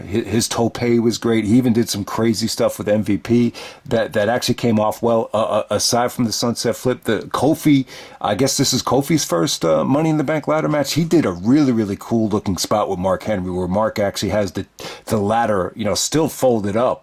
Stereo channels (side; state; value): both; identical; correlation 1.00